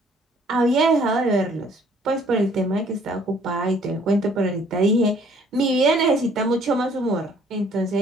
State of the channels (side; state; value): both; normal; correlation 0.60